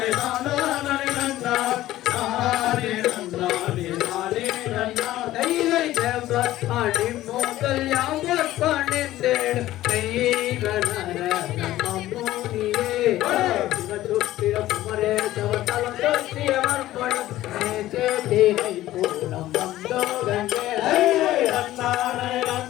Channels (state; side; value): quieter; right; 15.0 dB